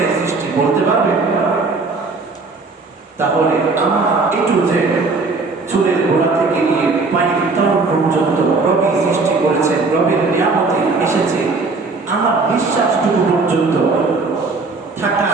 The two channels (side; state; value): left; quieter; 3.9 dB